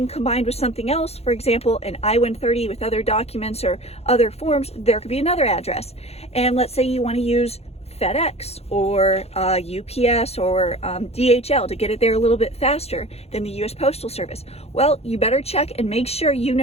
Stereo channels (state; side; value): late; right; 0.30 ms